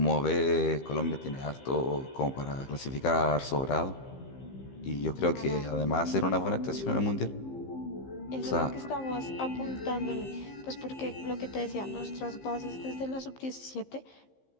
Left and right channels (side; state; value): right; late; 15 ms